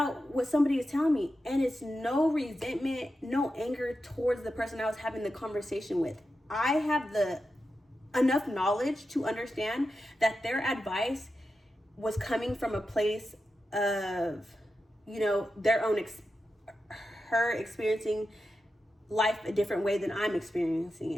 what somebody is telling me? And it's no resentment, no anger towards the person I was having the conversation with. I have enough knowledge to understand that their advice was coming from a place of, their own her experiencing life a different way than I'm experiencing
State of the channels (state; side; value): normal; both; correlation 0.90